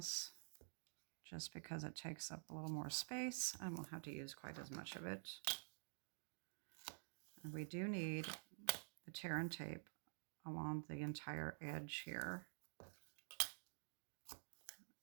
just because it takes up a little more space. I won't have to use quite as much of it. And we do need the tear and tape along the entire edge here.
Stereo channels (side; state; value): left; silent; digital silence